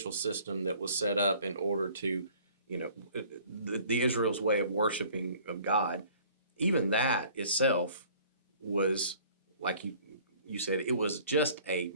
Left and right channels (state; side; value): inverted; both; correlation -0.53